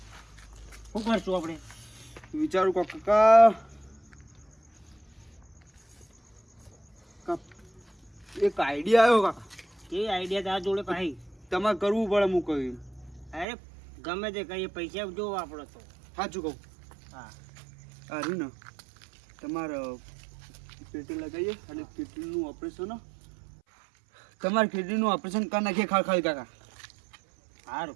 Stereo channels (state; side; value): drops out; left; at 13.5 s